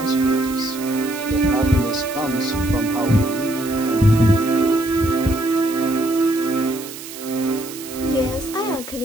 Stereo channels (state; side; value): noise; right; hiss, 13 dB below the sound